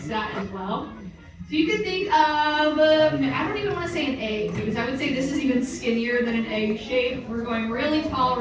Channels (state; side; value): identical; both; correlation 1.00